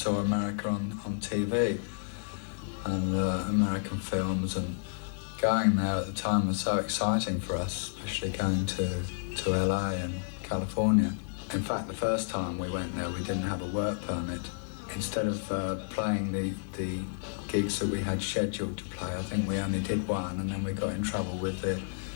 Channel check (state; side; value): silent; right; digital silence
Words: saw America on TV and American films, and going there at the time was so exciting for us, especially going to LA and California. In fact, the first time we went there, we didn't have a work permit. Instead of playing the gigs that we had scheduled to play, I think we only did one, and then we got in trouble with the